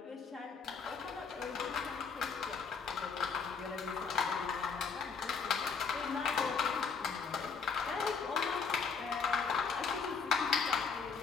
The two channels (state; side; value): quieter; right; 5.4 dB